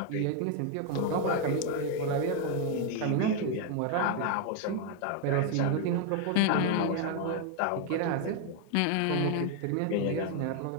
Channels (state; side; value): different; both; correlation 0.01